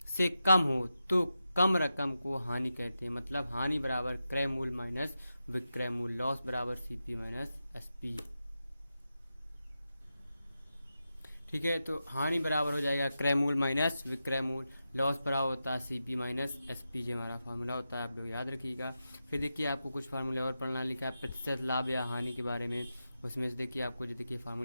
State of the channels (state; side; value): inverted; both; correlation -0.90